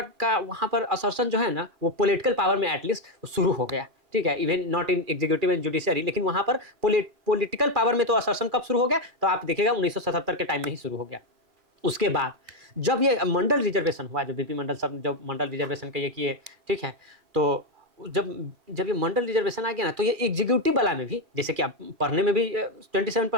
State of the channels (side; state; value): left; late; 2.4 ms